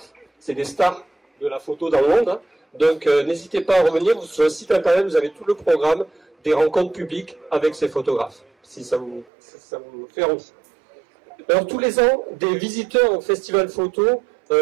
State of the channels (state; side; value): drops out; left; at 9.2 s